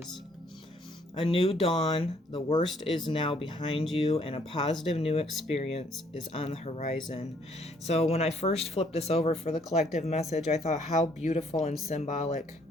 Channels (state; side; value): normal; both; correlation 0.65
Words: A new dawn, the worst is now behind you, and a positive new experience is on the horizon. So when I first flipped this over for the collective message, I thought how beautiful and symbolic